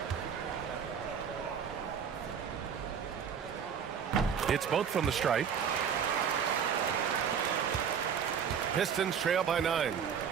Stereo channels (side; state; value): left; quieter; 7.4 dB